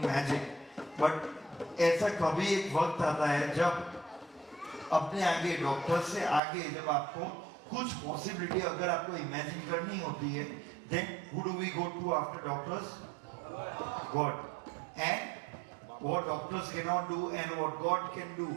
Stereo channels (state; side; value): drops out; left; at 6.4 s